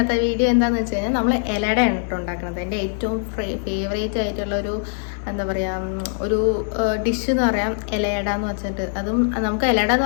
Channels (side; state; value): right; silent; digital silence